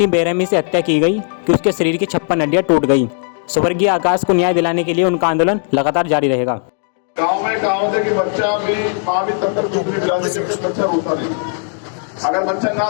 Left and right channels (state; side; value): silent; right; 57 dB below the other